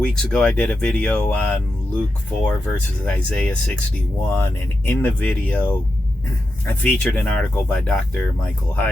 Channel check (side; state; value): both; normal; correlation 0.88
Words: ago, I did a video on Luke 4 versus Isaiah 61, and in the video, I featured an article by Dr. Michael